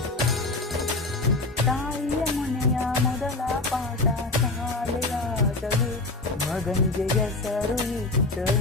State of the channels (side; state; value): right; quieter; 3.2 dB